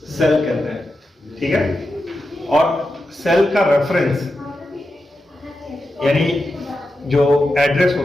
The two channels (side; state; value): both; normal; correlation 0.89